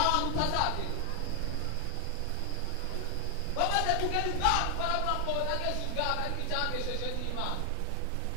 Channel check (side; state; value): both; different; correlation 0.00